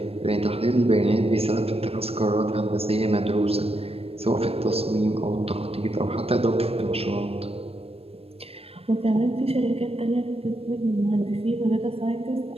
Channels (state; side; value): late; left; 0.28 ms